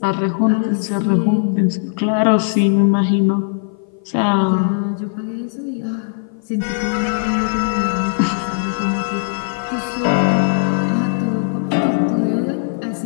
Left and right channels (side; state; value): right; silent; 56 dB below the other